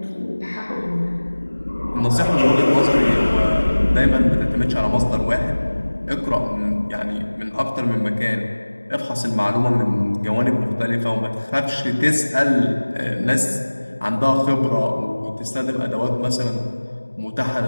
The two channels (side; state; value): both; inverted; correlation -1.00